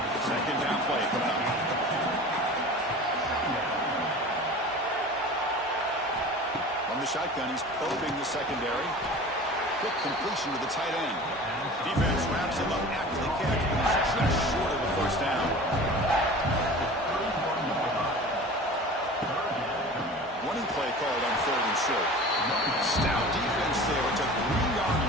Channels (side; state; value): both; normal; correlation 0.38